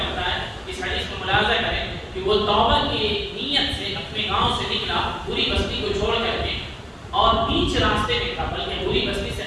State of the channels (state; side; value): identical; both; correlation 1.00